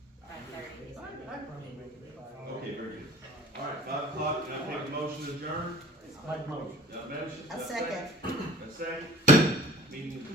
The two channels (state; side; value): normal; both; correlation 0.47